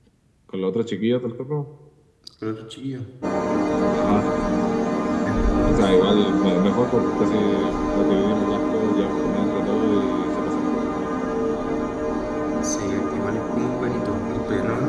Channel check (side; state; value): both; identical; correlation 1.00